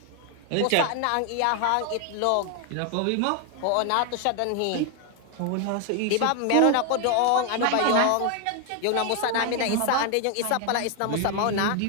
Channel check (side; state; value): both; different; correlation 0.00